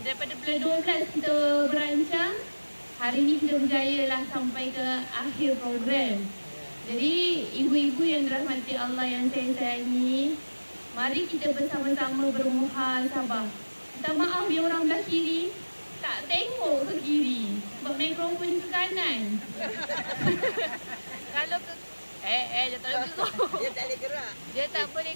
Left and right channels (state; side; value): inverted; both; correlation -1.00